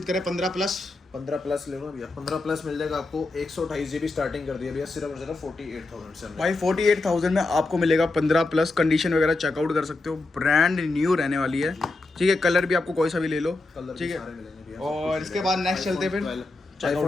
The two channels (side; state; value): right; quieter; 3.1 dB